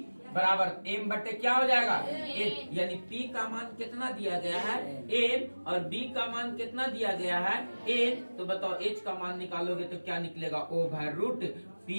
बराबर m बटे क्या हो जाएगा? m। यानी p का मान कितना दिया गया है? m, और b का मान कितना दिया गया है? n। तो बताओ h का मान निकालोगे तो क्या निकलेगा? ओवर रूट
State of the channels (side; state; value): both; inverted; correlation -1.00